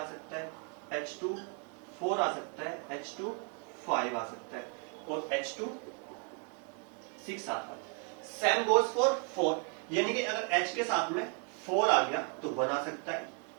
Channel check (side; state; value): left; quieter; 37.1 dB